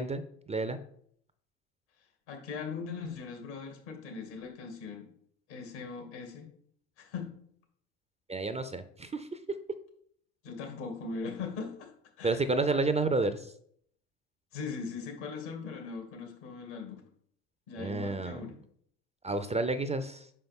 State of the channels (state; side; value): normal; both; correlation 0.45